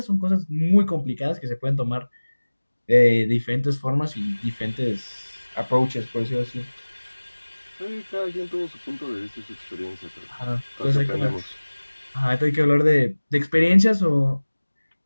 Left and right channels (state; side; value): inverted; both; correlation -1.00